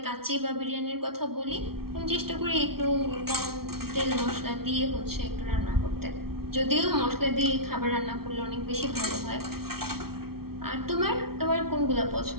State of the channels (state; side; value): late; left; 0.94 ms